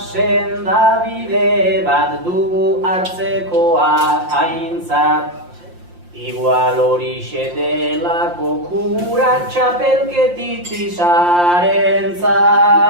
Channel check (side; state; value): left; late; 5.7 ms